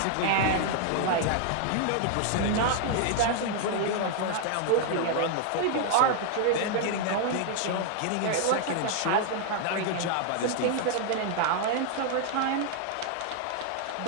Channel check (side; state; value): both; different; correlation 0.00